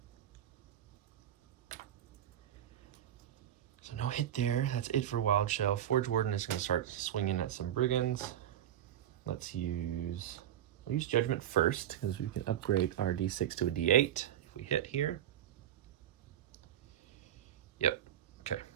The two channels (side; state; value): left; quieter; 11.0 dB